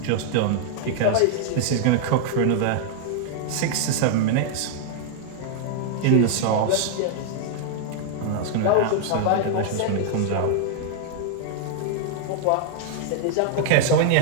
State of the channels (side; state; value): both; different; correlation 0.00